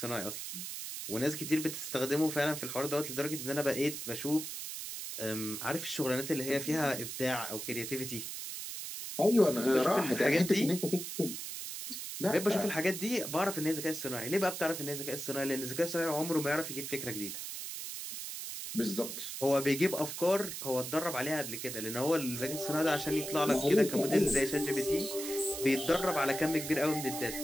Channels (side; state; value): right; noise; hiss, 7 dB below the sound